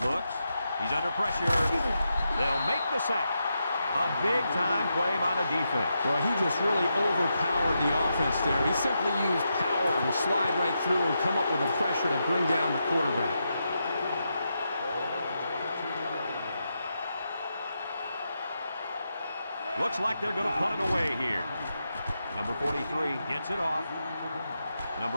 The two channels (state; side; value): inverted; both; correlation -0.85